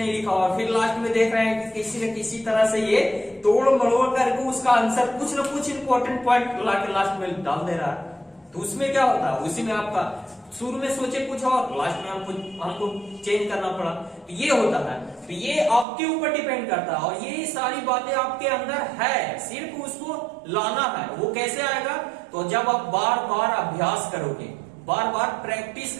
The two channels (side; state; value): left; drops out; at 15.9 s